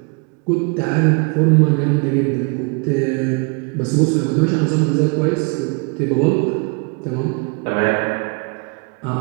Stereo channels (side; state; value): left; quieter; 33.4 dB